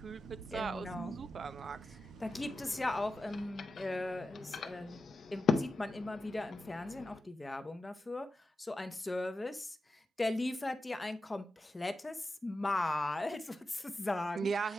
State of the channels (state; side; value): normal; both; correlation 0.90